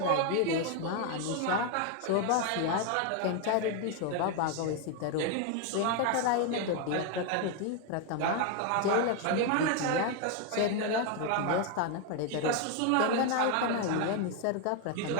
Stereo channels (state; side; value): different; both; correlation 0.01